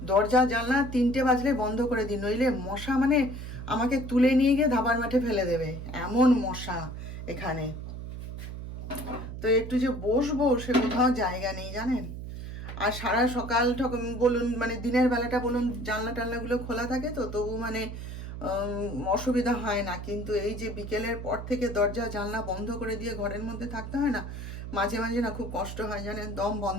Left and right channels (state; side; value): noise; right; hum, 8 dB below the sound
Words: দরজা জানলা 3টে বাজলে বন্ধ করে দিই, নইলে মশা মানে আমাকে তুলে নিয়ে গিয়ে ধাবার মাঠে ফেলে দেবে, এমন মশা এখানে। তো একটু যে বসবো সে কোথাও জায়গা নেই, জানেন। আর সারা সকাল বলুন, মানে দিনের বেলাটা বলুন, জানলা টানলাগুলো খোলা থাকে, তো তবু মানে অসুবিধা হয় না, কিন্তু এই যে বিকেলের পর থেকে দরজা জানলা বন্ধ করে দিয়ে ঘরের মধ্যে থাকতে হয় না, মাঝে মাঝে না খুব কষ্ট হয় জানেন, দম